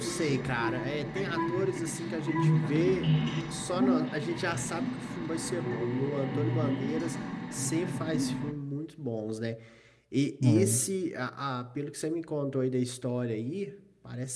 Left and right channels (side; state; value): both; identical; correlation 1.00